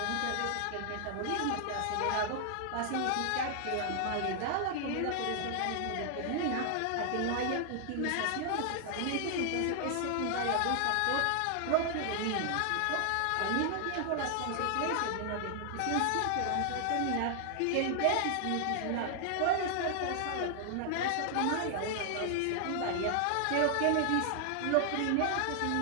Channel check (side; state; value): both; different; correlation 0.00